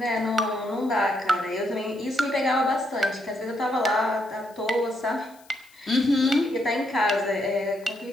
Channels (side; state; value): left; noise; hiss, 27 dB below the sound